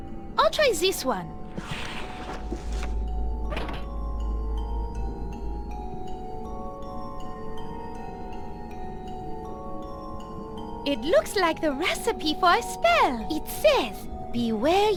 I'll try this one. It looks like the recipe for a spell. It says, "Beware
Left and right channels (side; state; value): both; identical; correlation 1.00